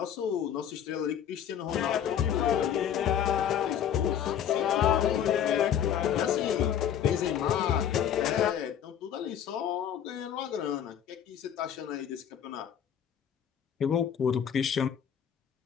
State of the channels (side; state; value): right; quieter; 9.2 dB